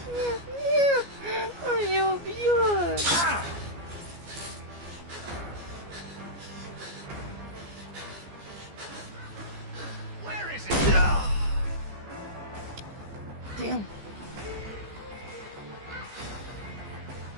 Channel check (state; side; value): late; left; 14 ms